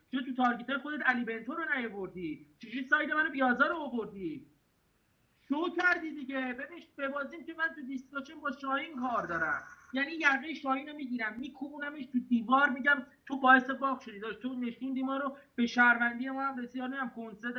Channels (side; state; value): both; identical; correlation 1.00